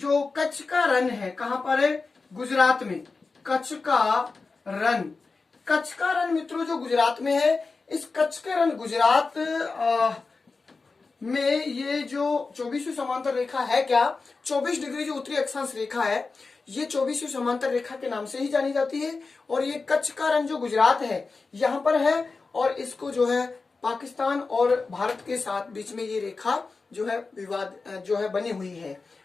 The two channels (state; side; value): quieter; right; 4.1 dB